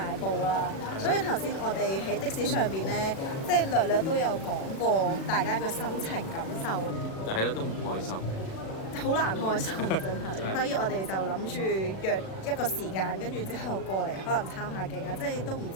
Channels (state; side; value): late; right; 37 ms